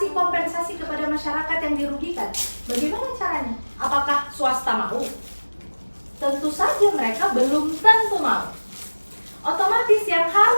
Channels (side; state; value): both; inverted; correlation -1.00